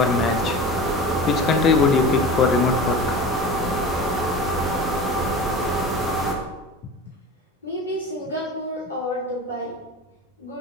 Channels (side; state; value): both; normal; correlation 0.33